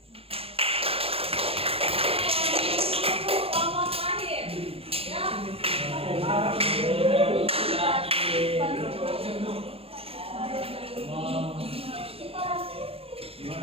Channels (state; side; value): late; left; 0.28 ms